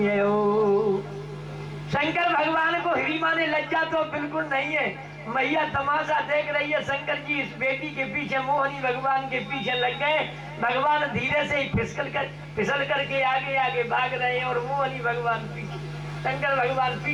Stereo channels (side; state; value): both; identical; correlation 1.00